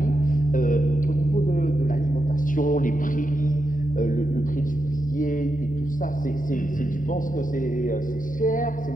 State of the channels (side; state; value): right; late; 0.39 ms